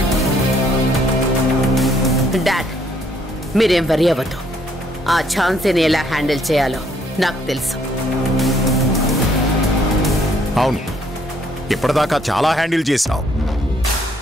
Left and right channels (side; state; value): both; normal; correlation 0.67